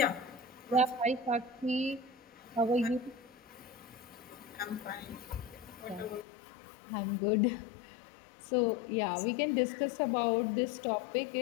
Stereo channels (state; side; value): drops out; right; at 6.2 s